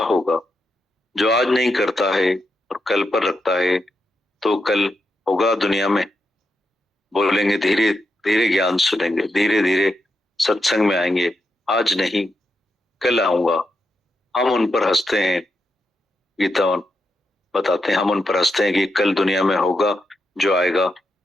जो आज नहीं करता है और कल पर रखता है तो कल होगा दुनिया में। बोलेंगे धीरे धीरे ज्ञान सुनेंगे, धीरे धीरे सत्संग में आएंगे, आज नहीं कल आऊंगा। हम उन पर हंसते हैं, गीता बताते हैं, हम उन पर हंसते हैं कि कल दुनिया में होगा जो आएगा।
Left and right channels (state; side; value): normal; both; correlation 0.84